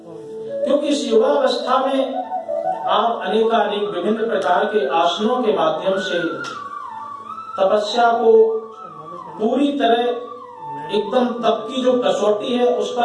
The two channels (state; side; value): identical; both; correlation 1.00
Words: क्योंकि इस युवा अवस्था में आप अनेकानेक विभिन्न प्रकार के आसनों के माध्यम से तपस्या को पूरी तरह एकदम तप की जो कसौटी है उस